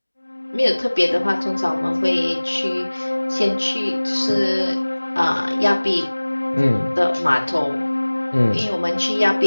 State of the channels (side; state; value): both; inverted; correlation -1.00